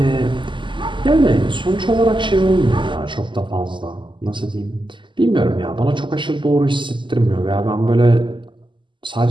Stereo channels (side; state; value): left; late; 0.24 ms